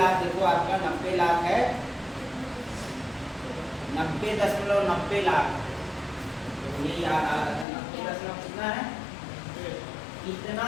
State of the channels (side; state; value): right; drops out; at 7.7 s